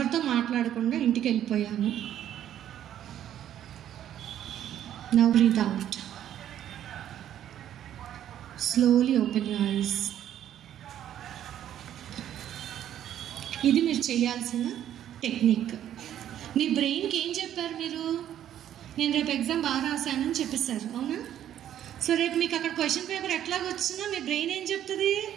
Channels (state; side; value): quieter; left; 11.0 dB